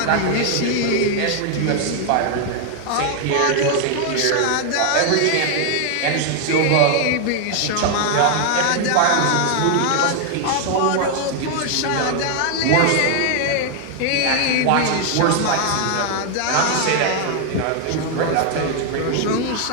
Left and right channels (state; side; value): different; both; correlation 0.00